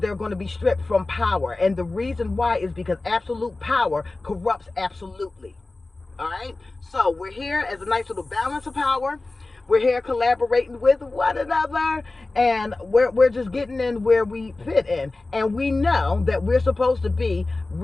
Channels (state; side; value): quieter; right; 3.2 dB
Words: going to be stripped from power. And the reason why is because absolute power corrupts absolutely. All right, so we're here as a nice little balance of power. We're here collaborating with one another, and we're just getting in where we fit in. And we know that we're supposed to be